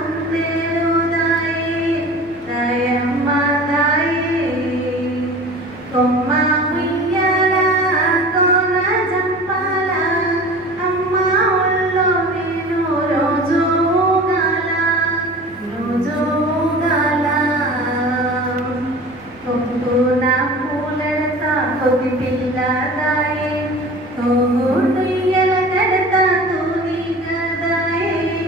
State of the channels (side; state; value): right; noise; rumble, 27 dB below the sound